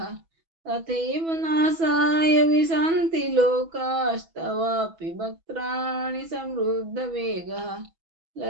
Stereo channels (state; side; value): late; left; 6.1 ms